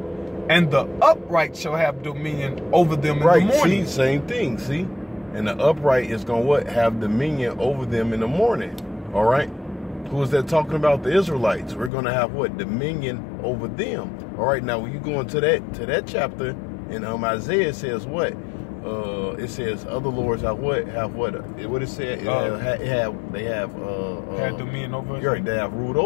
and the upright shall have dominion over them in the morning. See, same thing. See, and the upright is gonna what? Have dominion over them in the morning. All right. Who is that talking about? The Israelites. We're going to have what? Dominion over them. All right, now when you go into that chapter in Isaiah, it says what? It says other lords have what? Have what? What it said? They have dominion over us. Right, they have ruled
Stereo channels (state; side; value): drops out; right; at 11.9 s